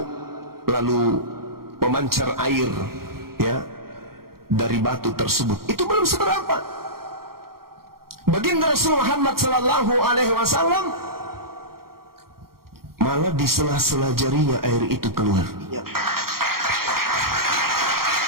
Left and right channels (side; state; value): left; late; 0.93 ms